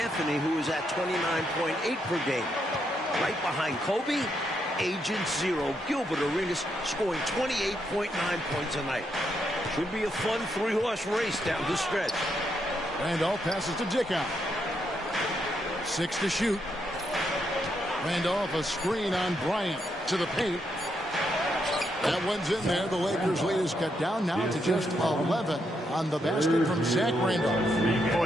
who is at 29.8 per game. Right behind Kobe, Agent Zero, Gilbert Arenas, scoring 28.9 points a night. Should be a fun three-horse race down the stretch. Randolph passes to Dickow. 6 to shoot. Randolph, a screen on Bryant to the paint. That one's in there. The Lakers' lead is cut down now to just 11 on the basket from Zach Randolph.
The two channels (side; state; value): both; normal; correlation 0.79